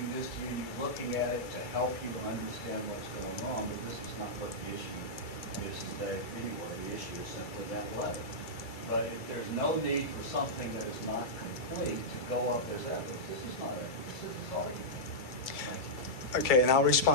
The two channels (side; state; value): right; late; 2.3 ms